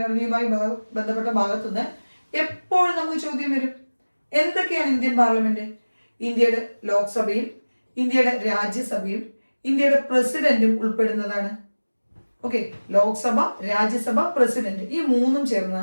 ബന്ധപ്പെട്ട ഭാഗത്തുനിന്ന് എപ്പോഴും നമുക്ക് ചോദ്യം വരും. എന്തൊക്കെയാണ് ഇന്ത്യൻ പാർലമെന്റ്? ഇന്ത്യയുടെ ലോക്സഭയും ഇന്ത്യയുടെ രാജ്യസഭയും ഇന്ത്യയുടെ പ്രസിഡന്റും ഉൾപ്പെടുന്നതാണ്. ഓക്കെ, ലോക്സഭ, രാജ്യസഭ, പ്രസിഡന്റ്, ഈ മൂന്നും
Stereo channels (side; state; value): both; inverted; correlation -1.00